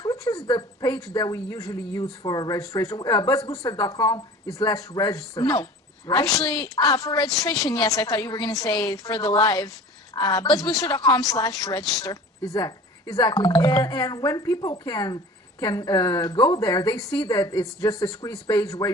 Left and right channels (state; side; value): normal; both; correlation 0.41